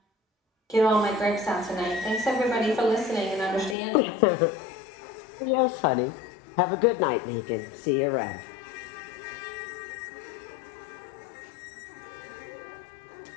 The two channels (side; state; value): right; drops out; at 3.8 s